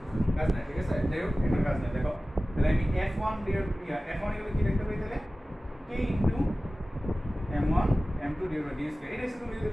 কাজ নাই ঠিক আছে যাই হোক এখানে কাজ নাই দেখো তাহলে আমি f1 f1 এগুলো কি লিখতে পারি তাহলে k into m1 m2 divide by d square এটা হচ্ছে তুমি যদি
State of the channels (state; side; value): normal; both; correlation 0.97